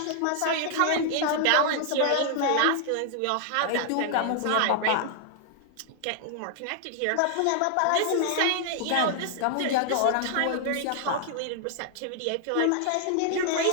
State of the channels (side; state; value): both; different; correlation 0.00